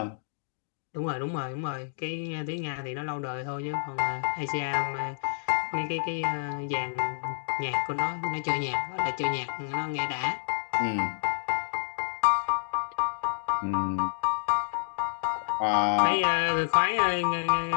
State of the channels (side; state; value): right; silent; digital silence